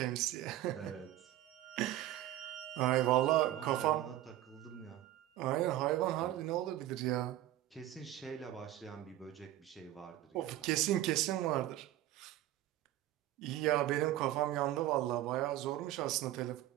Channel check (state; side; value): quieter; left; 14.0 dB